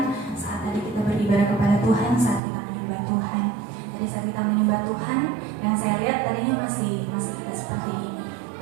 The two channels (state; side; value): drops out; left; at 2.4 s